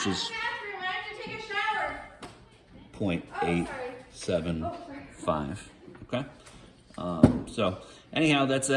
is 0.875. Okay. So anyhow, that's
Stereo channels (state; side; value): identical; both; correlation 1.00